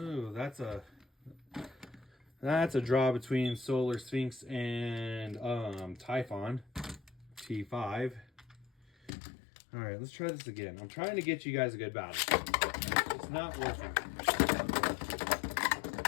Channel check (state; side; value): drops out; right; at 9.1 s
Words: that's a draw between Solar Sphinx and Typhon T5. All right, let's try this again. I'm trying to get you guys a good battle. It's not working.